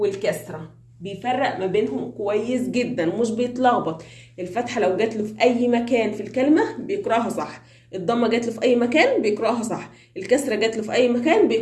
بيفرق ما بينهم كويس جدا، مش بيتلخبط. الفتحة لو جات له في أي مكان في الكلمة بيقرأها صح، الضمة جات له في أي مكان بيقرأها صح، الكسرة جات له في أي مكان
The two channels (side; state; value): both; identical; correlation 1.00